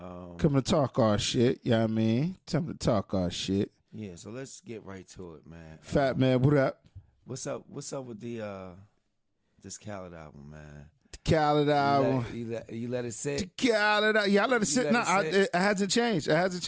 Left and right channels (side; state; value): both; identical; correlation 1.00